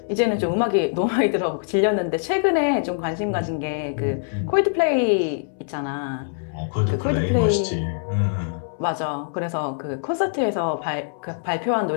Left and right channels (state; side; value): silent; right; 63 dB below the other